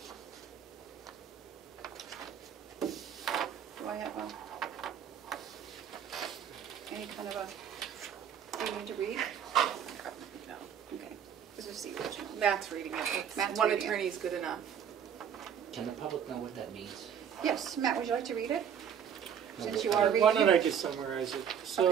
Do I have any kind of a thing to read? No. Okay, this is the original. Matt's reading it. Matt's One reading it. attorney is good enough. Can the public know what that means? Yes, Matt, would you like to read it? Since you No, are Why reading don't I it. just summarize it?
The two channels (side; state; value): left; quieter; 8.4 dB